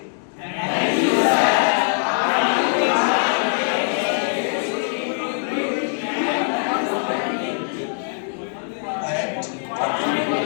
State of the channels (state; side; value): silent; right; 59 dB below the other